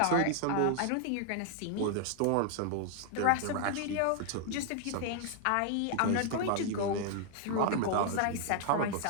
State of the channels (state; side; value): different; both; correlation 0.00